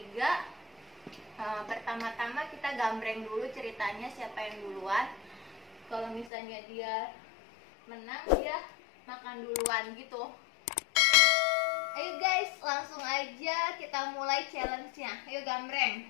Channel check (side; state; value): right; drops out; at 6.3 s